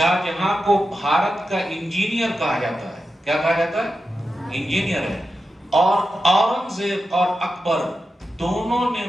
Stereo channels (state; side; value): normal; both; correlation 0.90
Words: جہاں کو بھارت کا انجینئر کہا جاتا ہے۔ کیا کہا جاتا ہے؟ انجینئر ہے۔ اور اورنگزیب اور اکبر دونوں نے